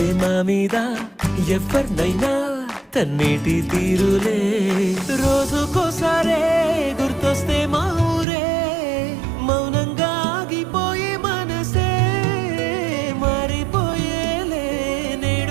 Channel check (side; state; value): left; drops out; at 8.2 s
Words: మా మీద ఎవరినైనా తన్నేటి తీరులే రోజుకోసారే గుర్తొస్తే మా ఊరే మౌనంగా ఆగిపోయే మనసే మారిపోయేలే